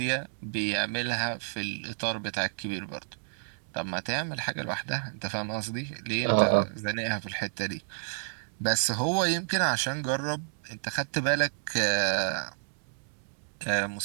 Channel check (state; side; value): silent; left; digital silence